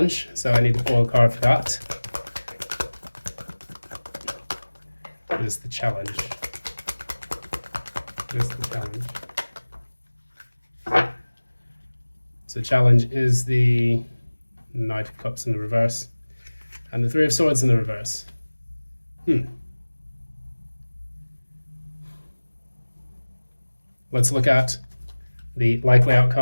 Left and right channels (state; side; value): inverted; both; correlation -1.00